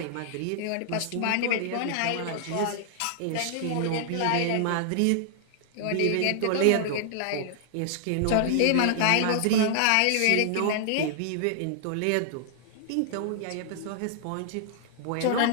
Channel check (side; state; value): both; different; correlation -0.01